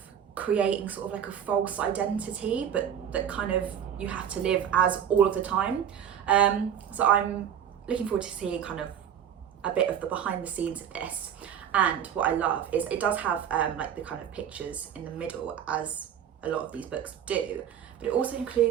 creating sort of like a false identity, but that kind of you have to live as all of the time. So I'm looking forward to seeing kind of a bit of the behind the scenes of this. And what I love is it does have like the kind of pictures in the middle, as a lot of these books do, but it also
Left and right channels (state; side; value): quieter; left; 9.0 dB